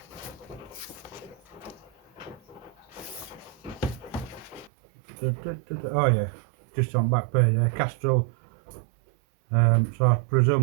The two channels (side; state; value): left; drops out; at 4.7 s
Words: Oh yeah, just on back page there, Castrol. So I